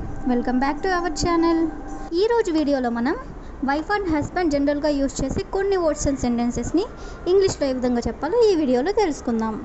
welcome back to our channel. ఈరోజు వీడియోలో మనం వైఫ్ అండ్ హస్బెండ్ జనరల్గా యూజ్ చేసే కొన్ని వర్డ్స్ అండ్ సెంటెన్సెస్ని ఇంగ్లీష్లో ఏ విధంగా చెప్పాలో ఈ వీడియోలో తెలుసుకుందాం.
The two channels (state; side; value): identical; both; correlation 1.00